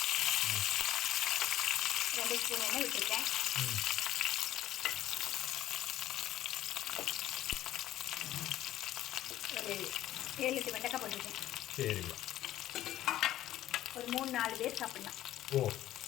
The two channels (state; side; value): quieter; right; 13.4 dB